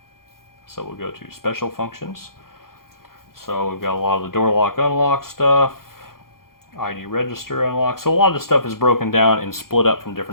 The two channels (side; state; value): right; late; 0.92 ms